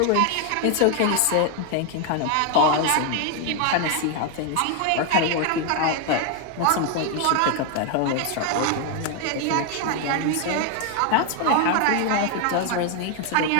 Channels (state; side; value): different; both; correlation 0.01